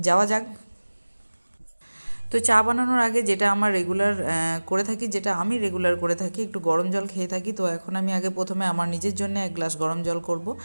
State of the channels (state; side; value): inverted; both; correlation -1.00